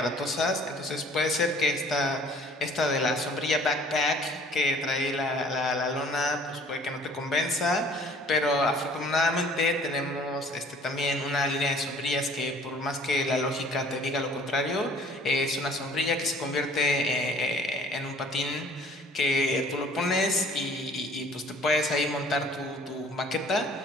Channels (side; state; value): both; normal; correlation 0.53